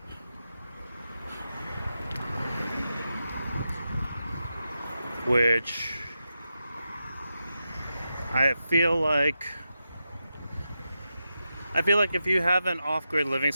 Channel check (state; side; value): inverted; both; correlation -0.89